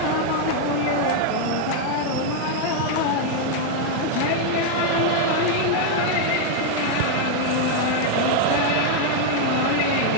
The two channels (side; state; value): both; different; correlation 0.00